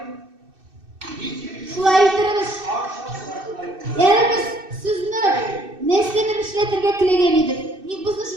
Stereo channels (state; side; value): late; left; 2.6 ms